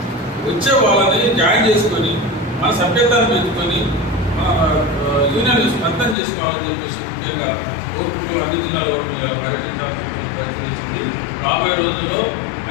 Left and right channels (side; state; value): right; drops out; at 6.2 s